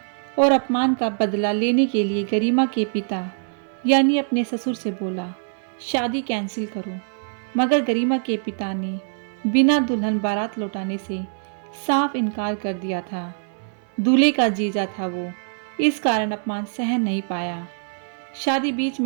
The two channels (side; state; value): left; silent; 63 dB below the other